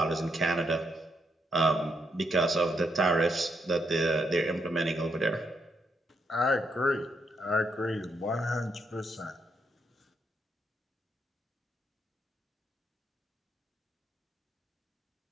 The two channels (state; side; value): normal; both; correlation 0.78